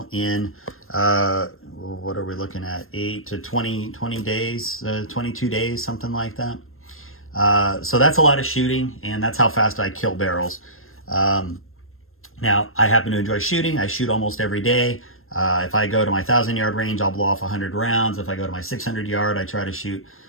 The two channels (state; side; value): late; right; 0.61 ms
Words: in, what are we looking at? 8 to 20 days, 22 days, something like that. So that's a lot of shooting, and that's how fast I kill barrels. Now, I happen to enjoy shooting. I shoot almost every day. If I go to my 1,000-yard range, I'll blow off 100 rounds. If I go to my 600-yard, I try to shoot,